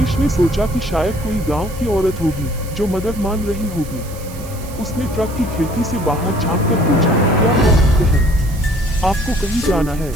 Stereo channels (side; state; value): right; noise; hiss, 18 dB below the sound